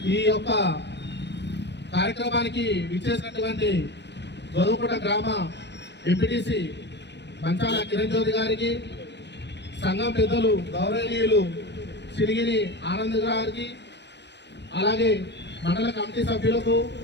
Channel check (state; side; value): late; right; 0.50 ms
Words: ఈ యొక్క కార్యక్రమానికి విచ్చేసినటువంటి గోధుమకుంట గ్రామ ఎంపీటీసీ మంచాల కిరణ్ జ్యోతి గారికి, సంఘం పెద్దలు గౌరవనీయులు సిరిగిరి ఆనంద్ గారికి, అలాగే మండల కమిటీ సభ్యులకు